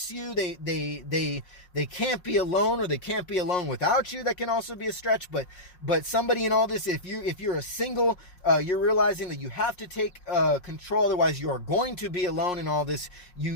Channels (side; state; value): right; late; 5.6 ms